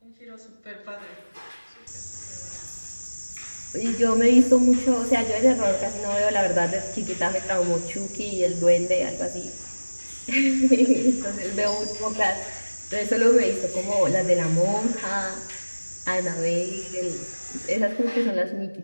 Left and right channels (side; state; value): both; inverted; correlation -1.00